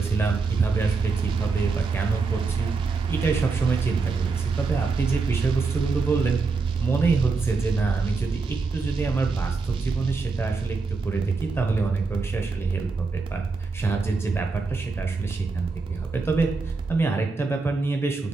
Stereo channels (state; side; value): quieter; left; 4.3 dB